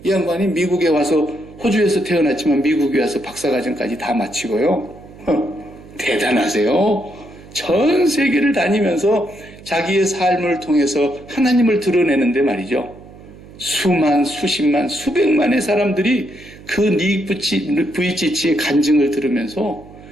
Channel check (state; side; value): noise; right; hum, 20 dB below the sound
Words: 이 양반이 미국에 와서 호주에서 태어났지만 미국에 와서 박사과정까지 다 마치고요. 대단하세요. 전 세계를 다니면서 자기의 삶을 통해서 하나님을 드러내는데 말이죠. 수만, 수십만, 수백만의 사람들이 그 닉 부이치치의 간증을 들으면서